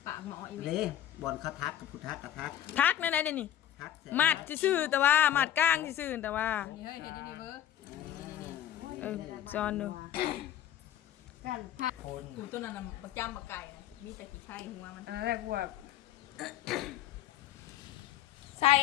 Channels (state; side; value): quieter; right; 11.5 dB